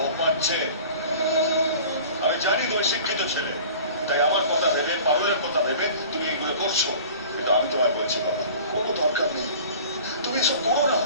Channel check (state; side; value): inverted; both; correlation -0.43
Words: ও পাচ্ছে। আমি জানি তুমি শিক্ষিত ছেলে, তাই আমার কথা ভেবে, পারুলের কথা ভেবে তুমি এগুলো করছো, কিন্তু আমি তোমায় বলছি বাবা, কোনো দরকার নেই, তুমি এসব করো না।